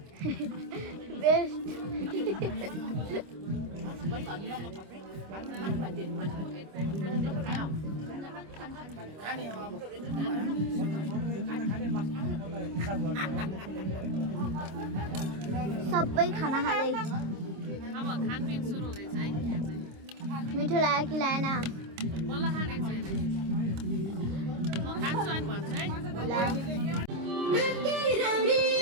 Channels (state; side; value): late; left; 26 ms